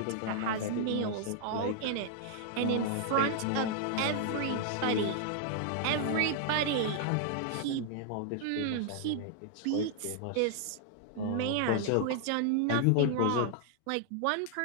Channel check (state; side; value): different; both; correlation -0.01